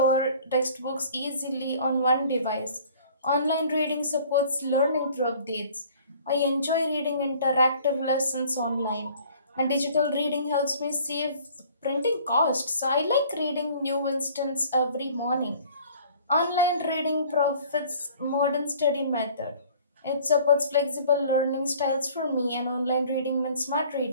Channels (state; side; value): inverted; both; correlation -0.52